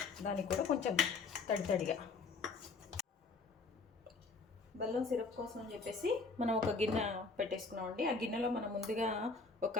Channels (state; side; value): quieter; right; 4.2 dB